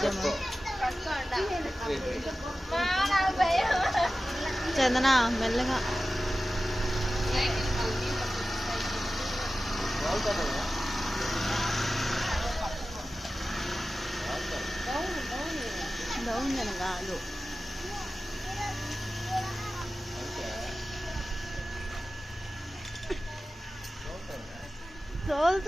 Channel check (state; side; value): normal; both; correlation 0.95